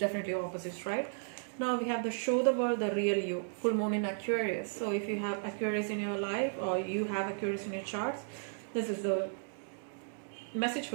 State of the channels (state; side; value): silent; left; digital silence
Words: opposites, right? Now we have the show the world the real you, full moon in Aquarius. So if you have Aquarius in your life or you have Aquarius in your charts, this is the message